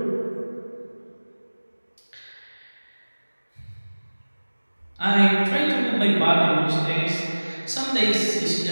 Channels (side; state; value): both; inverted; correlation -1.00